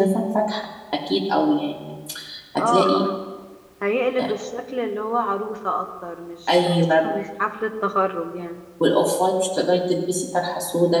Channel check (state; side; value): identical; both; correlation 1.00